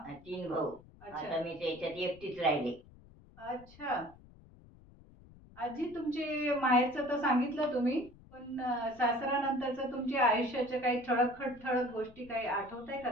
3 भाऊ. अच्छा आता मी त्याच्यात एकटीच राहिले. अच्छा. आजी तुमचे माहेरचं तर सांगितलं तुम्ही, पण सासरानंतरचं तुमच्या आयुष्याच्या काही ठळक गोष्टी काही आठवताय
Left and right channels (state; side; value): noise; left; rumble, 23 dB below the sound